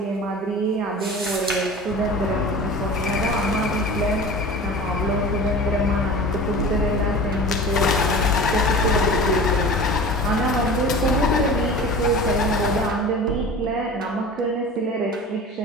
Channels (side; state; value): both; normal; correlation 0.37